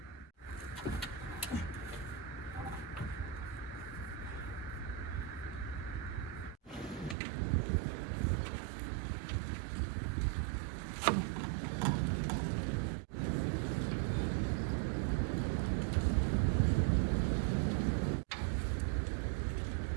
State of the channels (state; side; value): drops out; left; at 7.2 s